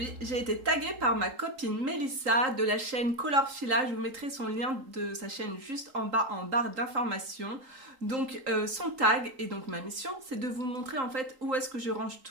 j'ai été taguée par ma copine Mélissa de la chaîne Colorfila. Je vous mettrai son lien de sa chaîne juste en bas en barre d'informations. Donc son tag et donc ma mission, c'est de vous montrer en fait où est-ce que je range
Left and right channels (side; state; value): left; late; 3.8 ms